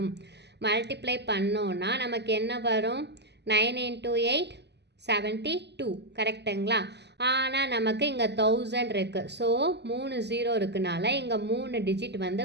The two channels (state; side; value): late; left; 0.50 ms